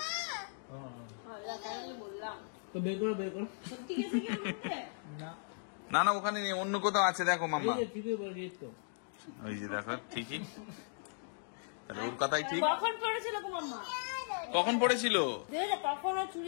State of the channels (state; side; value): silent; right; digital silence